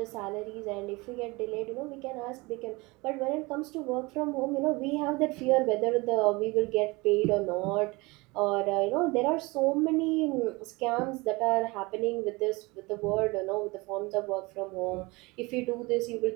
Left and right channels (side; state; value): left; quieter; 24.3 dB